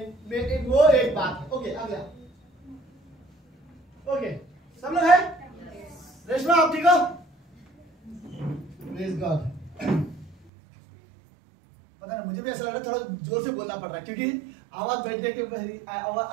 वो एक बात है। ओके, आ गया। ओके, सब लोग है? रेशमा आप ठीक हो? Praise God. पता नहीं, मुझे भी ऐसा लग रहा है थोड़ा जोर से बोलना पड़ रहा है क्योंकि आवाज बैठने के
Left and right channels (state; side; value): drops out; left; at 10.4 s